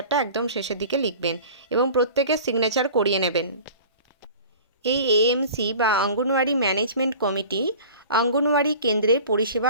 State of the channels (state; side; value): inverted; both; correlation -0.41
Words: একদম শেষের দিকে লিখবেন এবং প্রত্যেকের সিগনেচার করিয়ে নেবেন। এই এএমসি বা অঙ্গনওয়াড়ি ম্যানেজমেন্ট কমিটি অঙ্গনওয়াড়ি কেন্দ্রের পরিষেবা